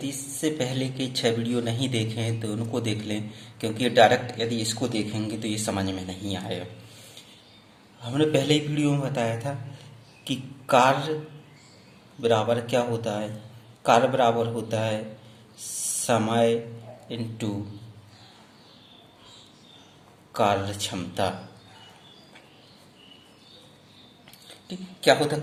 इससे पहले के 6 वीडियो नहीं देखे हैं तो उनको देख लें, क्योंकि ये डायरेक्ट यदि इसको देखेंगे तो ये समझ में नहीं आएगा। हमने पहले ही वीडियो में बताया था कि कार्य बराबर क्या होता है। कार्य बराबर होता है समय इंटू कार्य क्षमता। ठीक, क्या होता है?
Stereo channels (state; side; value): identical; both; correlation 1.00